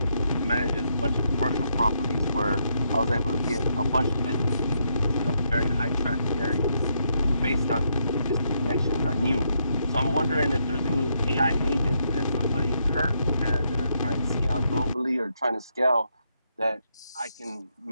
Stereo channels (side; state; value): both; inverted; correlation -0.77